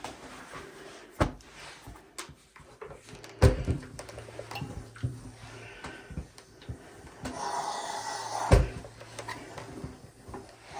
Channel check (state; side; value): identical; both; correlation 1.00